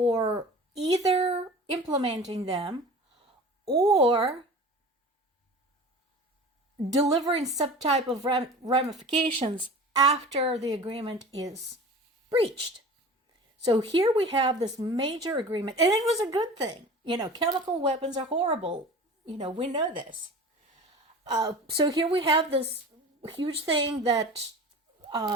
either implementing them or delivering some type of ramifications after the agreement is breached. So here we have this major agreement, and it was a good thing. Chemical weapons are horrible. We know this. So here we have this huge thing that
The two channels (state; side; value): normal; both; correlation 0.38